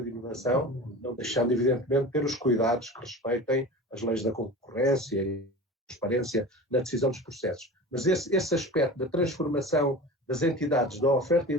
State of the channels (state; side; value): normal; both; correlation 0.34